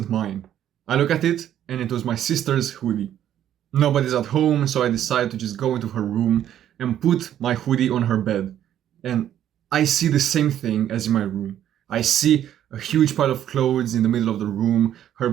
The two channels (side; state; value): left; quieter; 10.9 dB